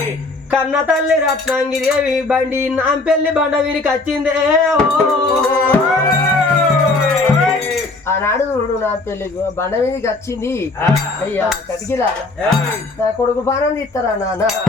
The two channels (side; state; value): right; quieter; 3.3 dB